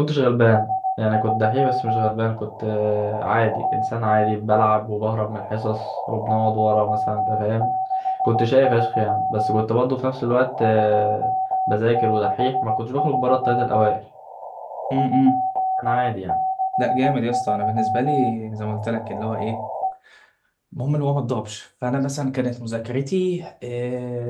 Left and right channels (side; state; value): both; identical; correlation 1.00